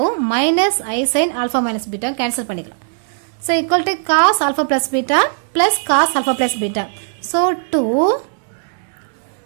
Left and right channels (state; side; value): silent; left; digital silence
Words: minus I sin alpha minus beta cancel பண்ணிக்கலாம். so equal to cos alpha plus beta plus cos alpha plus beta. so